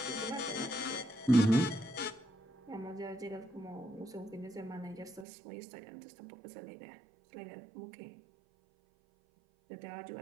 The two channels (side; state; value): left; drops out; at 5.2 s